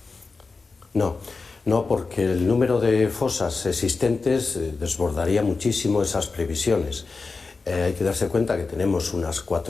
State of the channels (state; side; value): quieter; right; 4.2 dB